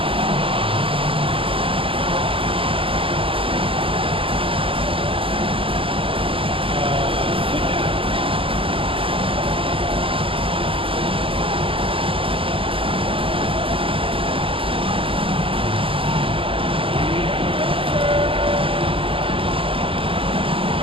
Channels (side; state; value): left; late; 0.26 ms